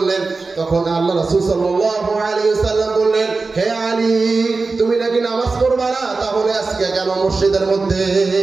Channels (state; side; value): quieter; left; 3.9 dB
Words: তখন আল্লাহ রাসূল সাল্লাল্লাহু আলাইহি ওয়াসাল্লাম বললেন, হে আলী, তুমি নাকি নামাজ পড়বা না, তাহলে আজকে কেন মসজিদের মধ্যে?